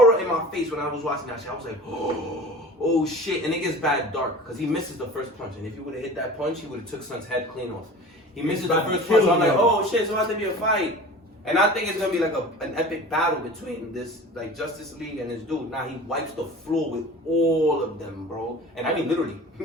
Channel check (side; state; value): both; normal; correlation 0.39